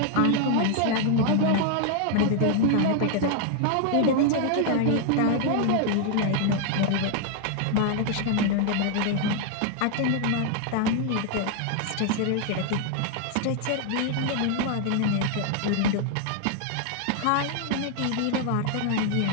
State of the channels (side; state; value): both; different; correlation 0.00